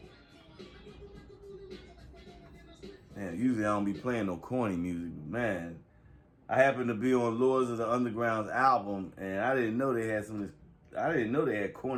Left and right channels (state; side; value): identical; both; correlation 1.00